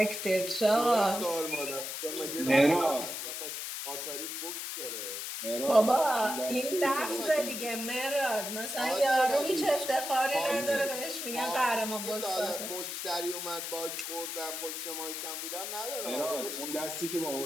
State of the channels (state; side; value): noise; left; hiss, 5 dB below the sound